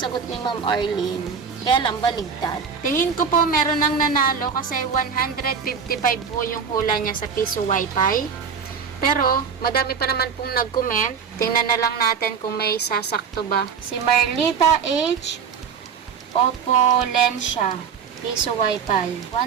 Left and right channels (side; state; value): left; quieter; 6.5 dB